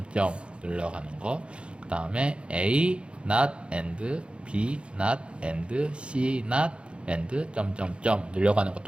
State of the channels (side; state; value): left; late; 0.057 ms